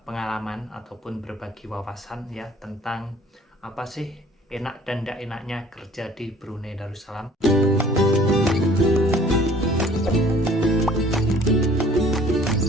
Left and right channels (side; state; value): both; normal; correlation 0.53